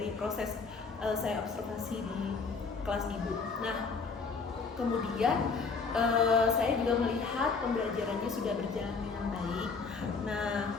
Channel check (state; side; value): quieter; right; 4.7 dB